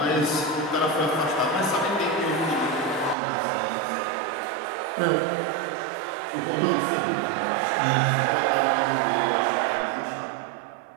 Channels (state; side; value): drops out; left; at 3.2 s